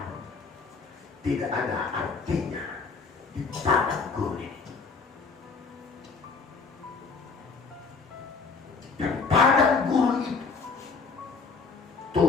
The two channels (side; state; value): right; quieter; 4.8 dB